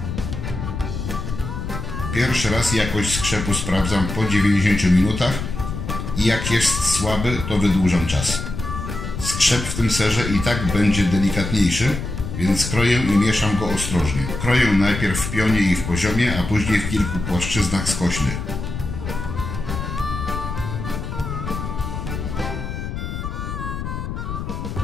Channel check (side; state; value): left; noise; rumble, 6 dB below the sound